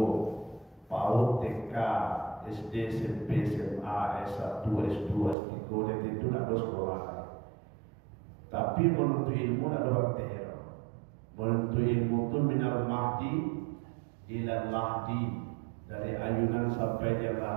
PAUD, TK, SD, SMP, SMA, S1, S2, S3, dan itu nak ada sekolah. Tapi menuntut ilmu nak ada bertino. Menuntut ilmu itu minal mahdi ila lahdi, dari ayunan sampai dia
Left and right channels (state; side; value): drops out; left; at 5.4 s